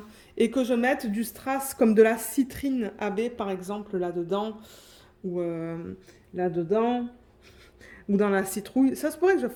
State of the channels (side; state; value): both; identical; correlation 1.00